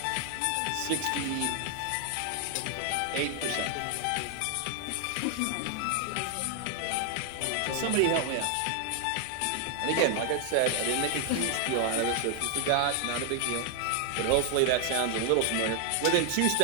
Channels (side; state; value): both; different; correlation 0.00